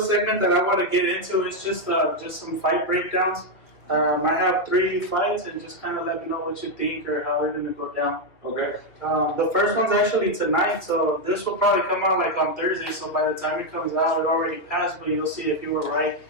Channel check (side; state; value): right; late; 2.0 ms